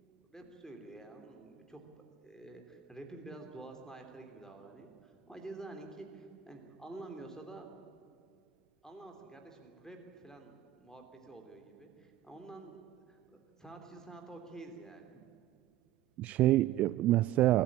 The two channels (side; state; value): left; quieter; 13.2 dB